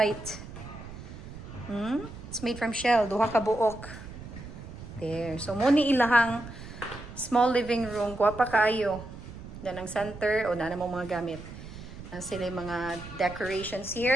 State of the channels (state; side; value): noise; right; rumble, 13 dB below the sound